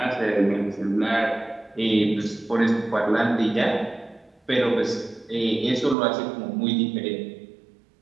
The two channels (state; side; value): drops out; left; at 6.0 s